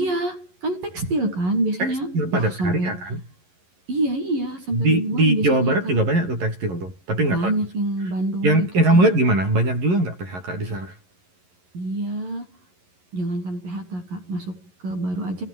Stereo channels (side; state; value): left; late; 11 ms